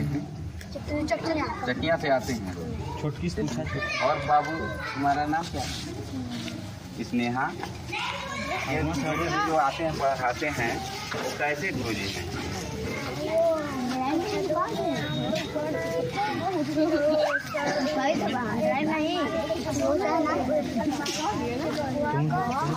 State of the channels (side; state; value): both; identical; correlation 1.00